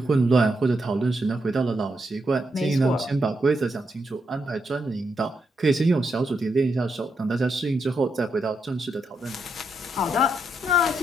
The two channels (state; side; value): normal; both; correlation 0.81